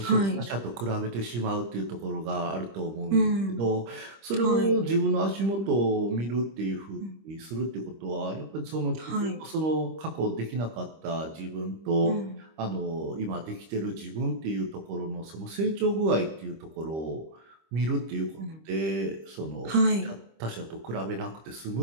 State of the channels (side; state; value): left; late; 25 ms